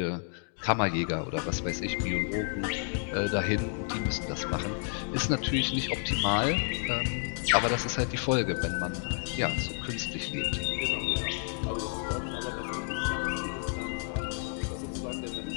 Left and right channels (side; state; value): right; silent; 57 dB below the other